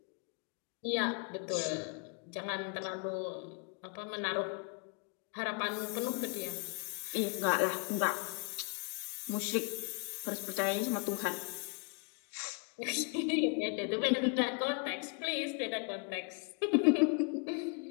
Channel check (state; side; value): quieter; right; 34.3 dB